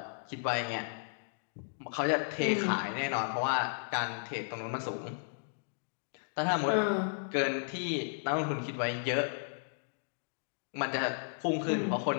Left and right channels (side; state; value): right; silent; digital silence